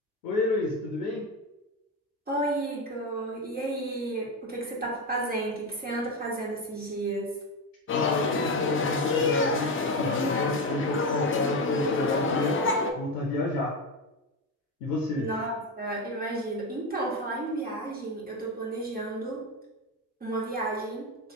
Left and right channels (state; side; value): normal; both; correlation 0.15